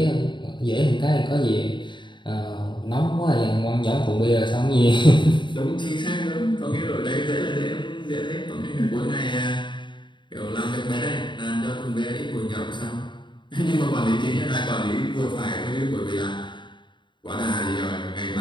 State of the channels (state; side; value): late; right; 0.23 ms